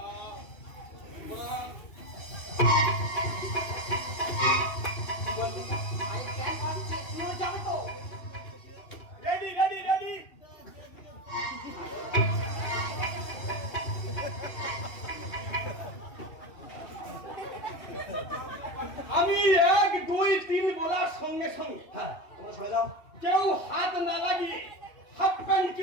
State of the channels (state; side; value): late; right; 2.7 ms